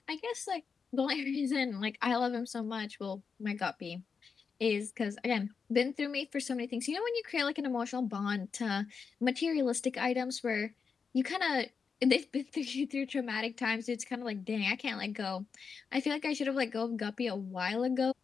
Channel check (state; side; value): quieter; right; 5.6 dB